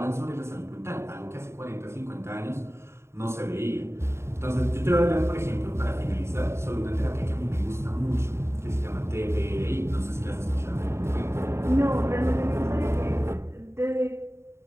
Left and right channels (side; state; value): left; late; 0.13 ms